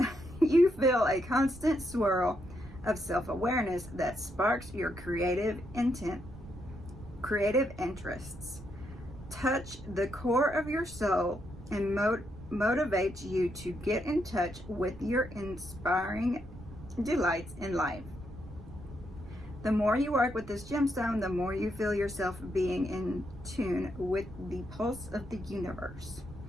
you feel a constant swirl of self-awareness that sparks your creative interests, touch the core of your soul, and motivates you to get in touch with your inspiring delights in life. The more you work with this gemstone, the more you feel yourself being in tune with the pulse of the universe.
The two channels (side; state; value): right; noise; rumble, 15 dB below the sound